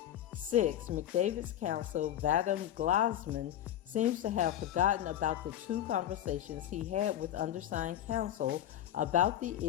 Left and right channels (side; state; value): right; quieter; 11.5 dB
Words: 6, McDavid's counsel, LaDamien Bryson, seems to have forgotten about the 2 conversations he had with undersigned counsel about the